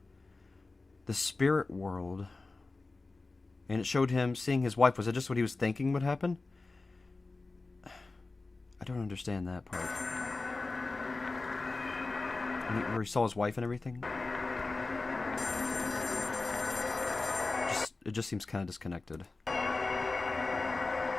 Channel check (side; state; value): right; quieter; 3.5 dB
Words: the spirit world. And it showed him seeing his wife. Was it just what he was thinking would happen? I don't understand that part. Where he saw his wife and everything? It just seems kind of disconnected.